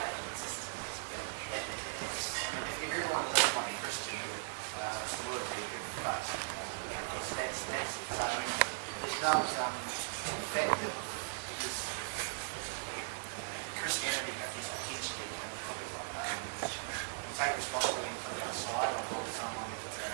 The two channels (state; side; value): silent; left; digital silence